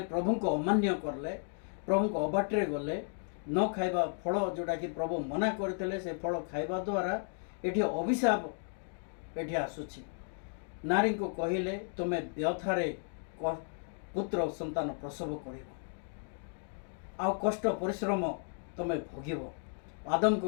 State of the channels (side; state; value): right; silent; 55 dB below the other